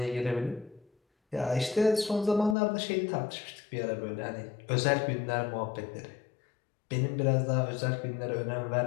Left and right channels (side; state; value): right; drops out; at 2.6 s